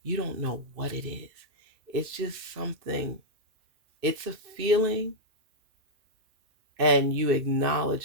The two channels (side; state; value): left; late; 2.6 ms